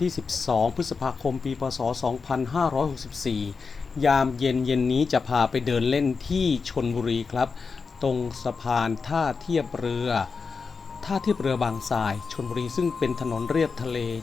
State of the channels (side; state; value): right; quieter; 5.0 dB